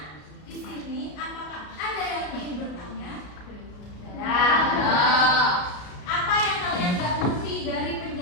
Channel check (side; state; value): right; late; 33 ms